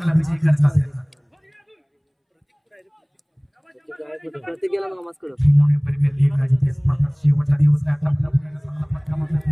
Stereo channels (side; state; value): both; identical; correlation 1.00